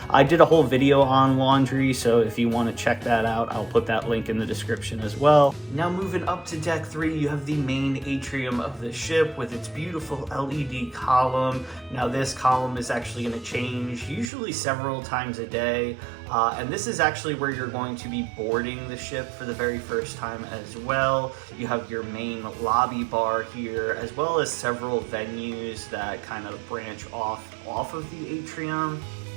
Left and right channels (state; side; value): drops out; left; at 14.3 s